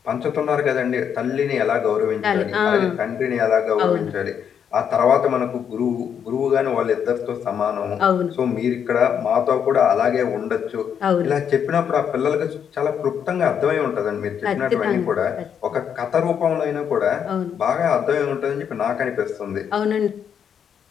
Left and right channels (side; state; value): right; quieter; 8.0 dB